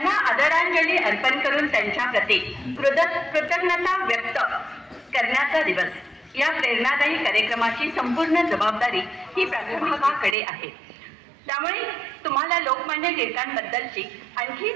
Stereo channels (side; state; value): left; drops out; at 10.4 s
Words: आदरांजली अर्पण करून त्यांच्या प्रती कृतज्ञता व्यक्त करण्याचा दिवस। या प्रेरणादायी कार्यक्रमाची संपूर्ण जबाबदारी ही प्राध्यापकाकडे आहे। त्यामुळे तुम्हाला लोकमान्य टिळकांबद्दलची आणखी